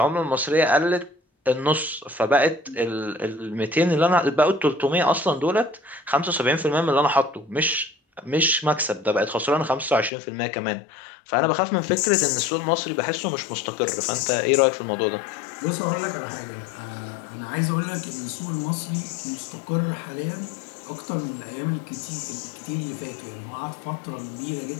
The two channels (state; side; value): drops out; right; at 10.1 s